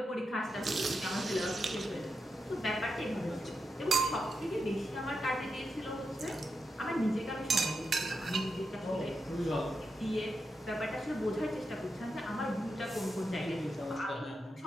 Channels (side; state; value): both; normal; correlation 0.86